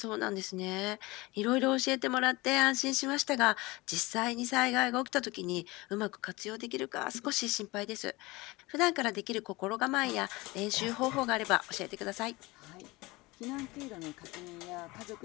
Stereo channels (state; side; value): quieter; right; 22.3 dB